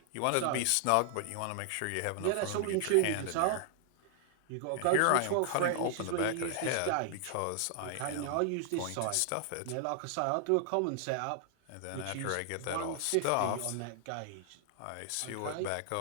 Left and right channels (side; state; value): both; different; correlation 0.00